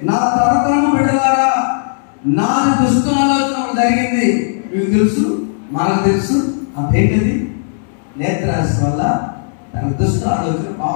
నా తరతరము బిడ్డలారా నాది దుష్ట ఆలోచన జరిగింది. మీకు తెలుసు, మనకు తెలుసు. అదేంటది? నేత్రాశ వల్ల తన దుష్ట ఆలోచన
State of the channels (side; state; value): right; silent; digital silence